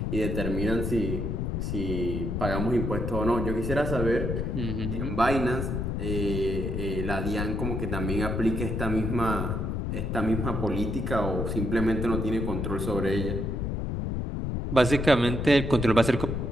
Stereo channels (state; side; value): noise; left; rumble, 2 dB below the sound